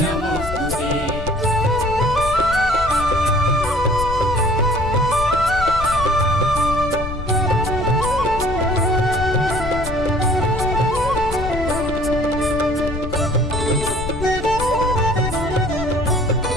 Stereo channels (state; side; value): noise; left; rumble, 8 dB below the sound